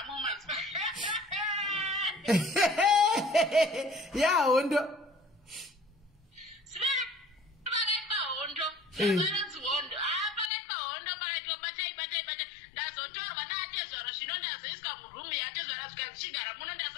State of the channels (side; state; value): right; drops out; at 10.5 s